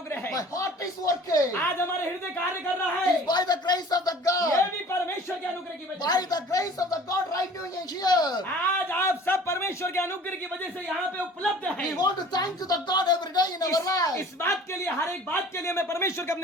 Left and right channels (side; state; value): both; normal; correlation 0.47